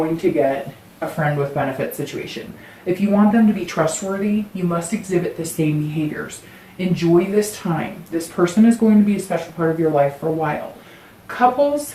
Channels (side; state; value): both; identical; correlation 1.00